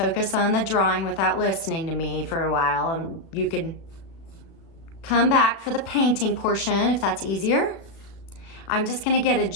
on the drawing without listening to me for a while, and you can come back for the painting portion if that's easier. I'm just gonna get a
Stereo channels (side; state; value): right; late; 36 ms